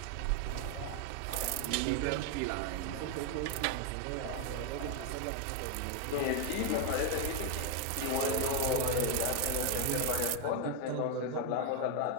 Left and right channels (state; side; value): different; both; correlation 0.01